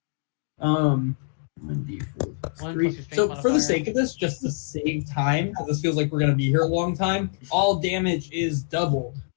1d4 plus 1 3. plus your strength So for the modifier. sake of this, just to save time, because this feels like we're going to be here a long time, all damage is doubled.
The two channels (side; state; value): right; silent; 58 dB below the other